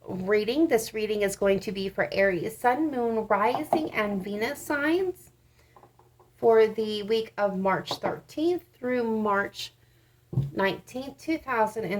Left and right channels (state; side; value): identical; both; correlation 1.00